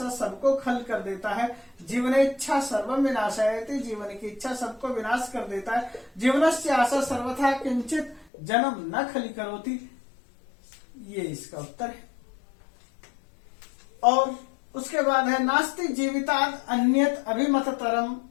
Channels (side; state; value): right; drops out; at 8.2 s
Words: सबको खल कर देता है। जीवन इच्छा सर्वम विनाशायति, जीवन की इच्छा सबको विनाश कर देता है। जीवनस्य आशा सर्वथा किंचित जन्म न खली करोति, ये इसका उत्तर है। और उसके बाद है नास्ति जीवितात् अन्यत अभिमततरम